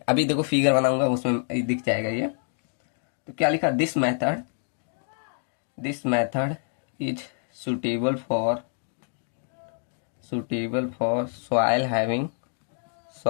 अभी देखो फिगर बनाऊंगा, उसमें दिख जाएगा ये। तो क्या लिखा? This method is suitable for soil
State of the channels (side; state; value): right; silent; digital silence